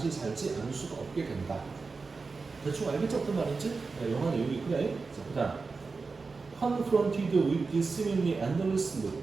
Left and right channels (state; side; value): quieter; left; 4.3 dB